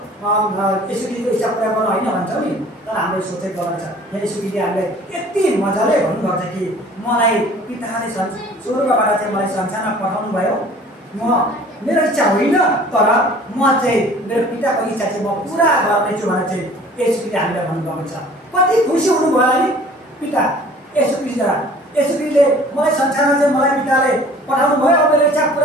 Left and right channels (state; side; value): normal; both; correlation 0.49